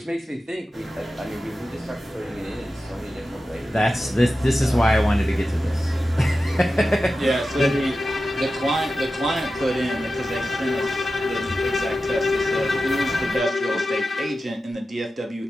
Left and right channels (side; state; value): both; normal; correlation 0.93